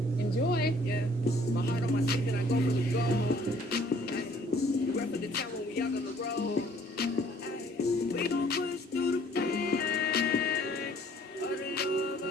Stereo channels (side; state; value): both; normal; correlation 0.59